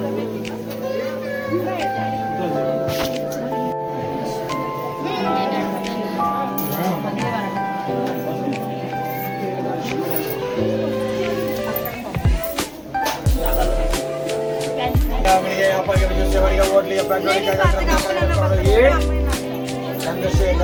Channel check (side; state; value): both; identical; correlation 1.00